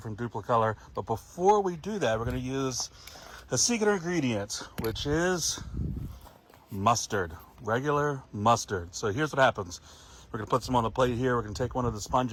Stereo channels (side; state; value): both; identical; correlation 1.00